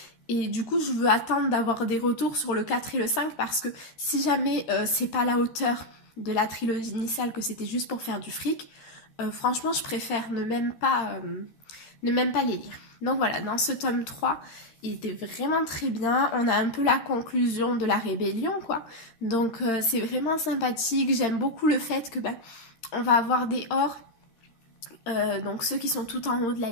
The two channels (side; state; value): right; late; 13 ms